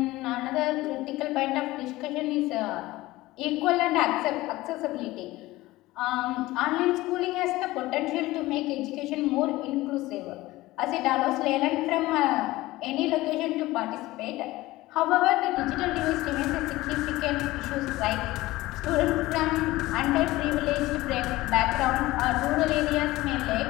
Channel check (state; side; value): quieter; right; 18.4 dB